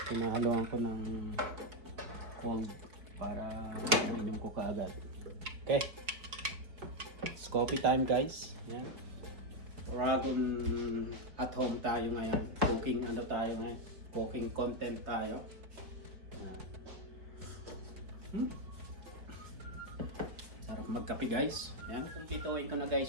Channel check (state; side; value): late; left; 4.7 ms